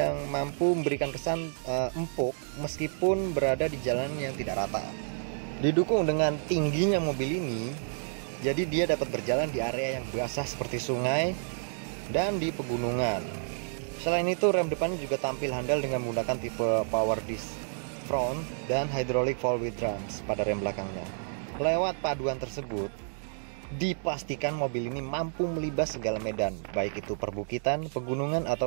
mampu memberikan kesan empuk meskipun berada di jalan yang tidak rata. Didukung dengan tingginya mobil ini, jadi dia dapat berjalan di area yang basah seperti sungai dan di pegunungan. Selain itu, rem depannya juga tampil handal dengan menggunakan tipe power disc front dan hydraulic four wheel drums pada rem belakangnya. Lewat paduan tersebut, dipastikan mobil ini mampu melibas segala medan, baik itu perbukitan, pegunungan,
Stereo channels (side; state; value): left; silent; digital silence